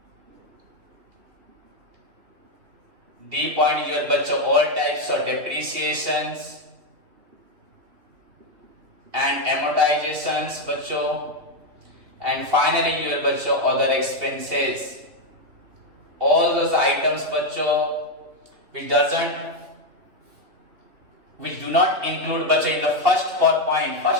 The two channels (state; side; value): late; left; 3.3 ms